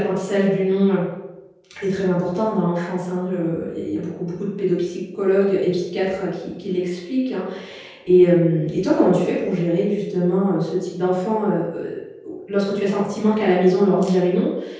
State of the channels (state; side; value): identical; both; correlation 1.00